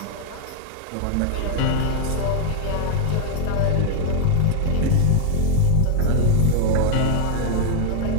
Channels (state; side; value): different; both; correlation 0.00